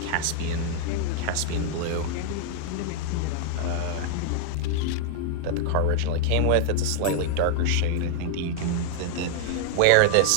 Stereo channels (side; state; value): both; different; correlation 0.00